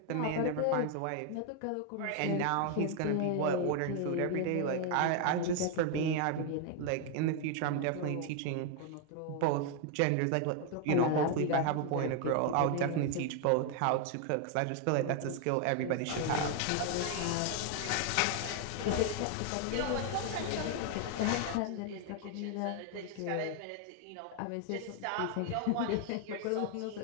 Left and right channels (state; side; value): different; both; correlation 0.00